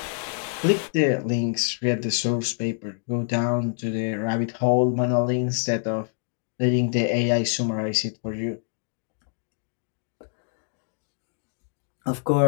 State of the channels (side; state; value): right; silent; 61 dB below the other